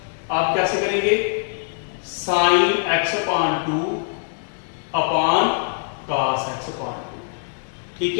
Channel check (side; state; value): right; silent; digital silence